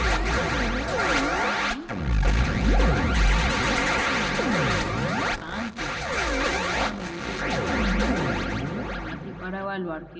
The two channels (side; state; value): both; identical; correlation 1.00